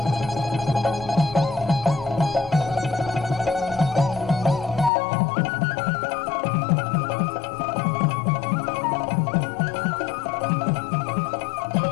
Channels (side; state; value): right; drops out; at 4.9 s